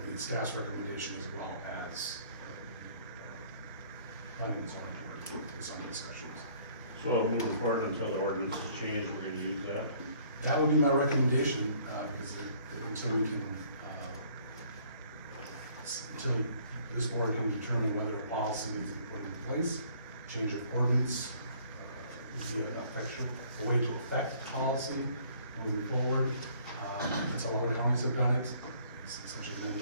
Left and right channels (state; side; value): inverted; both; correlation -0.59